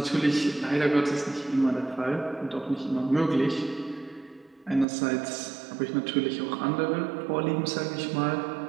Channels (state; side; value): drops out; left; at 4.9 s